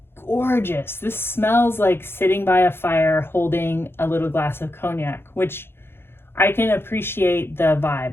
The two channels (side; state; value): right; late; 0.11 ms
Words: gorgeous. This smells like sitting by a fire holding a little glass of cognac, which I can appreciate the